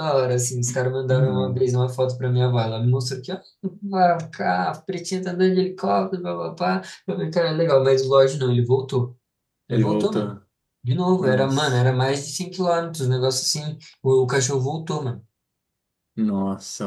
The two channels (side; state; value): both; identical; correlation 1.00